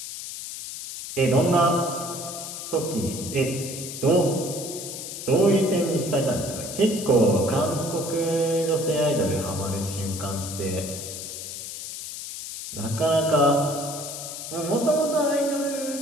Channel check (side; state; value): left; noise; hiss, 8 dB below the sound